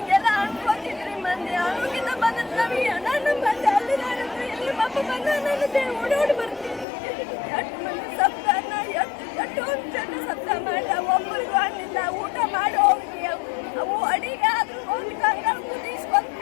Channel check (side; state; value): right; drops out; at 6.9 s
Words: ಅನ್ಕೋತಿದ್ರಿ. ಮಂದಿ ಆರೋಗ್ಯದ ಬಂದ ನಮಗೆ ನಾನು ಬಂದೆ ಅಲ್ಲಿ ಇಲ್ಲಿ ಅಪ್ಪ ಬಂದ ನನ್ನ ಓಡೋಡಿ